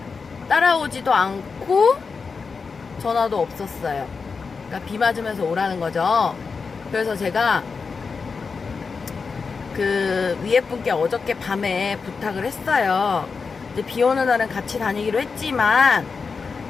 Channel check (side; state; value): right; quieter; 5.0 dB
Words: 따라오지도 않고 전화도 없었어요. 그러니까 비 맞으면서 오라는 거죠. 그래서 제가 그 위에 분께 어저께 밤에 부탁을 했어요. 이제 비 오는 날은 같이 다니기로 했지만,